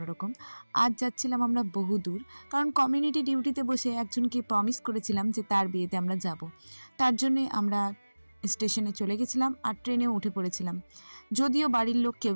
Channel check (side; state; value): both; inverted; correlation -1.00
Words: আজ যাচ্ছিলাম আমরা বহু দূর, কারণ কমিউনিটি ডিউটিতে বসে একজনকে প্রমিস করেছিলাম যে তার বিয়েতে আমরা যাব। তার জন্যে আমরা স্টেশনে চলে গেছিলাম আর ট্রেনেও উঠে পড়েছিলাম। যদিও বাড়ির লোক